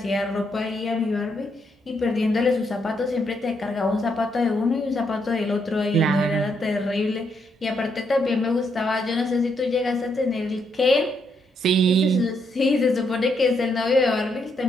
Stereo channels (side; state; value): both; normal; correlation 0.77